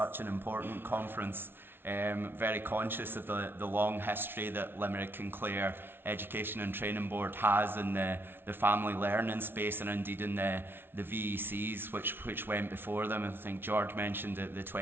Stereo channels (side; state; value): left; late; 0.11 ms